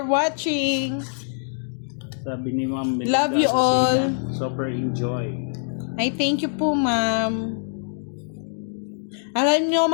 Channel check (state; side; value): silent; right; digital silence